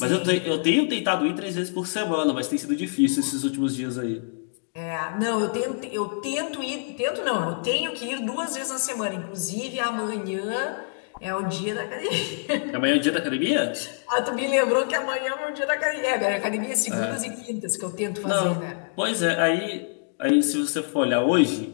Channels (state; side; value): silent; right; digital silence